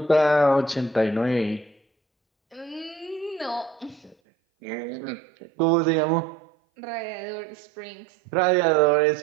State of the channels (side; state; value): left; drops out; at 4.2 s